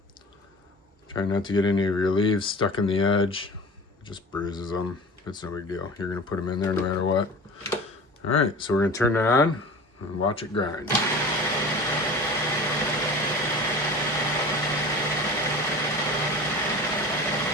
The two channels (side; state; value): both; normal; correlation 0.37